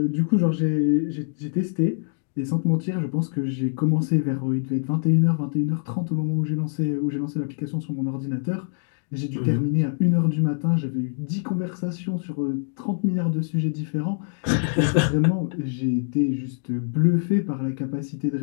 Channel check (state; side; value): silent; right; digital silence